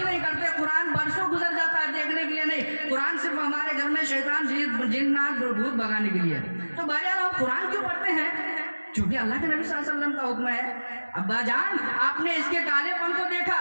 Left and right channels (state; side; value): inverted; both; correlation -1.00